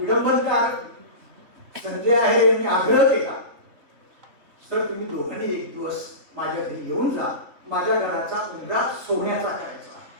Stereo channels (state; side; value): late; left; 3.5 ms